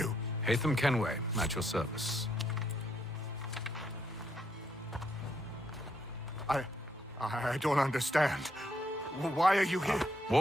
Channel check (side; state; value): both; normal; correlation 0.75